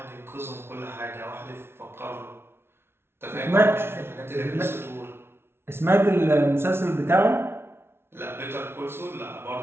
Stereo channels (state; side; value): late; left; 0.12 ms